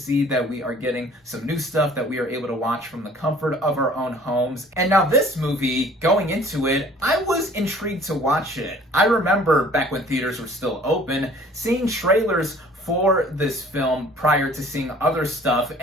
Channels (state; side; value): normal; both; correlation 0.52